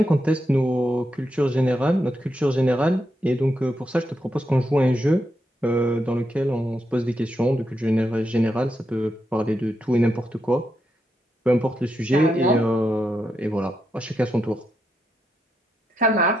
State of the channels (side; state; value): both; normal; correlation 0.83